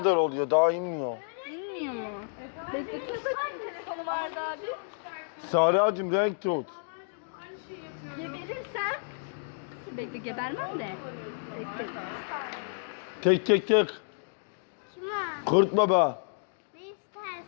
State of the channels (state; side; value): silent; right; digital silence